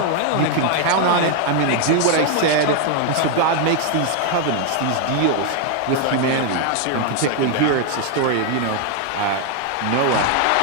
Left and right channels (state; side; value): different; both; correlation 0.00